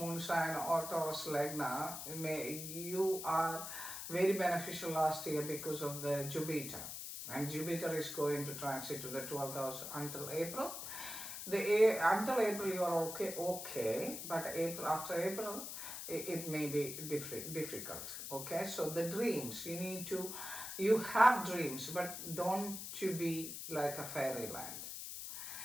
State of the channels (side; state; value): left; noise; hiss, 7 dB below the sound